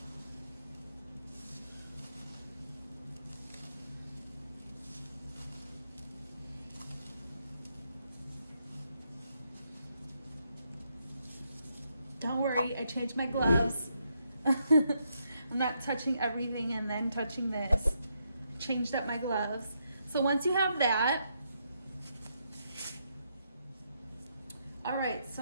Don't worry, I changed my gloves. I'm not touching everything and then touching this. Changed up my gloves. So once you have that, all right, so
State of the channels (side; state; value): both; inverted; correlation -0.79